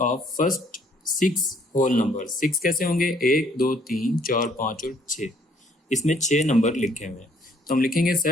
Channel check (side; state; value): both; normal; correlation 0.64